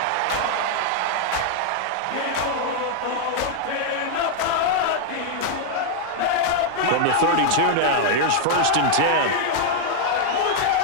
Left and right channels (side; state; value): both; different; correlation 0.00